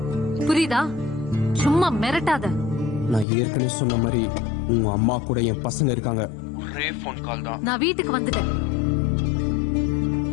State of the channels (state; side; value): drops out; right; at 3.2 s